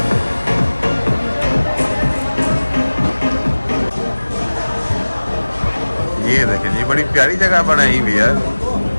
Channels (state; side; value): inverted; both; correlation -1.00